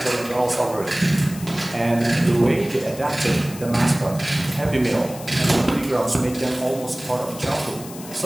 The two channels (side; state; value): left; noise; hiss, 15 dB below the sound